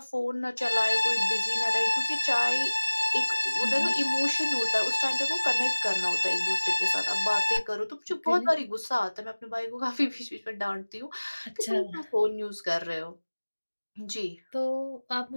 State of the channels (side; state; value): both; inverted; correlation -1.00